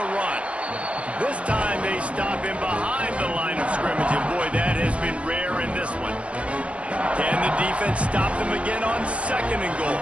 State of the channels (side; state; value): left; late; 0.062 ms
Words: run. This time they stop him behind the line of scrimmage, and boy, that has been rare in this one. Can the defense stop them again on second and goal?